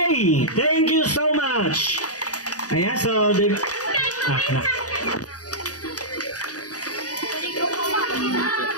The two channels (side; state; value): right; late; 0.67 ms